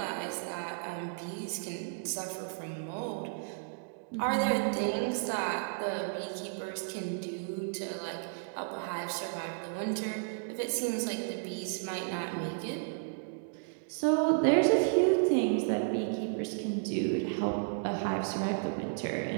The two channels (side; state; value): left; silent; digital silence